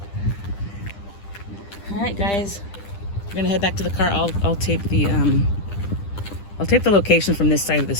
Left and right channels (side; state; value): right; late; 10 ms